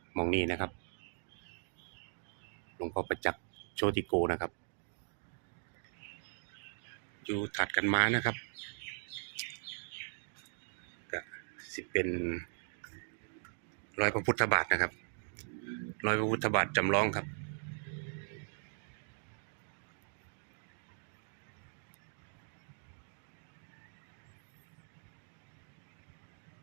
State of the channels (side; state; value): left; silent; 52 dB below the other